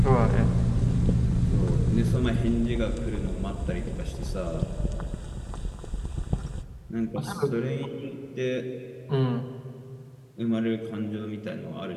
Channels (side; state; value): both; identical; correlation 1.00